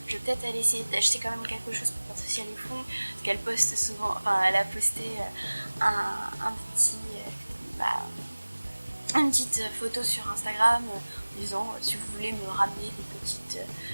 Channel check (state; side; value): inverted; both; correlation -1.00